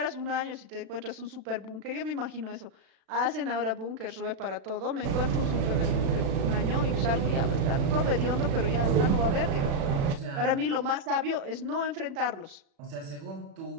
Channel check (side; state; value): left; late; 36 ms